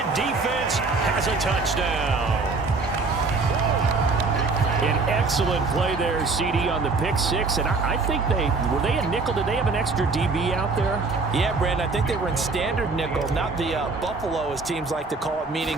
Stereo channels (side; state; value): left; quieter; 4.0 dB